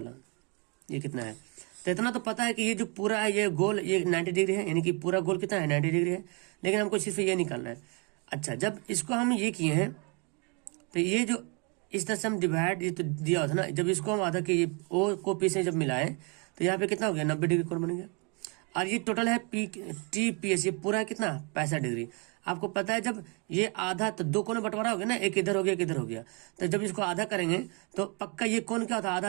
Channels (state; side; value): quieter; left; 33.6 dB